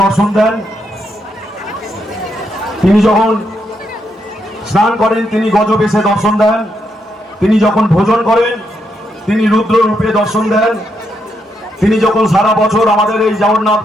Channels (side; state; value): both; normal; correlation 0.79